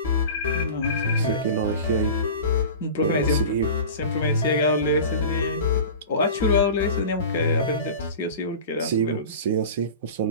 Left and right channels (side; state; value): both; inverted; correlation -0.35